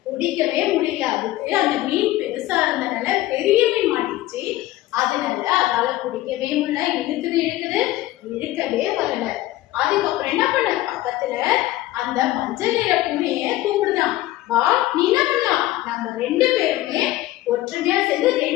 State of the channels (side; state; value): right; quieter; 16.2 dB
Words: பிடிக்கவே முடியல. அதுக்கு அந்த மீன் பெருசா இருந்தனால பெரிய மீன் மாட்டிச்சு. அதனால அதால பிடிக்கவே முடியல. இழுக்குது இழுக்கவே வரல. அதுக்கப்புறம் என்ன பண்ண, பக்கத்துல அந்த மஞ்சள் நிற பூனைய கூப்பிடுதான், வா நீ என்ன பண்ணலாம், நம்ம 2 பேருமே ஒற்றுமையா சேர்ந்து